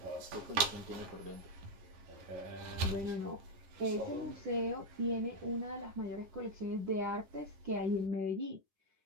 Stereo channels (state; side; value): late; left; 11 ms